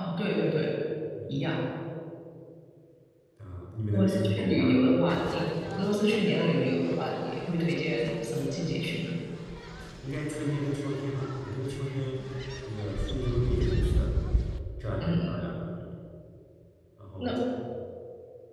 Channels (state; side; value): identical; both; correlation 1.00